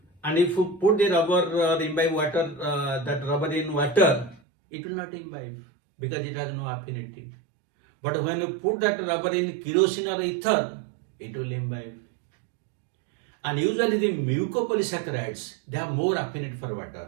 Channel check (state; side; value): drops out; left; at 4.4 s